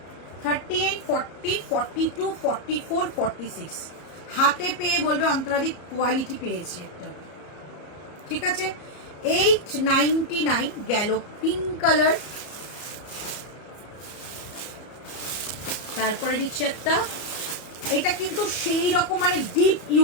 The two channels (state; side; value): late; right; 34 ms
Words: 38, 40, 42, 44, 46 হাতে পেয়ে বলবে অন্তরাদি কোয়ালিটি পেয়েছি একটা, ঠিক আছে। 899 গেল পিঙ্ক কালার। তারপরে দিচ্ছে একটা, এটা কিন্তু সেই রকম মানে ডিপ